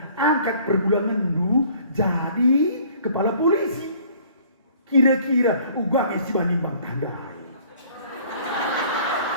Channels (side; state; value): both; inverted; correlation -0.55